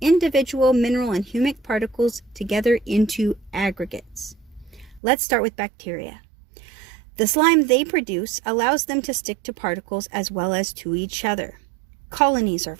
individual mineral and humic particles together into aggregates. Let's start with bacteria. The slime they produce allows them to stick to particles as well as to each other. Colonies are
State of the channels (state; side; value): drops out; left; at 5.0 s